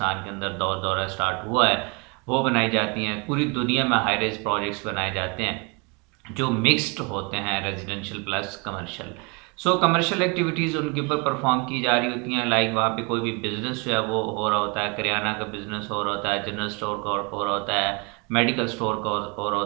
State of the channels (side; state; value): left; quieter; 31.2 dB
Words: के अंदर दौरा स्टार्ट हुआ है, वो बनाई जाती हैं। पूरी दुनिया में हाई रेज प्रोजेक्ट्स बनाए जाते हैं जो मिक्स्ड होते हैं, रेजिडेंशियल प्लस कमर्शियल। सो कमर्शियल एक्टिविटीज़ उनके ऊपर परफॉर्म की जा रही होती हैं, लाइक वहाँ पे कोई भी बिजनेस जो है वो हो रहा होता है, करियाना का बिजनेस हो रहा होता है, जनरल स्टोर का हो रहा होता है, मेडिकल स्टोर का हो रहा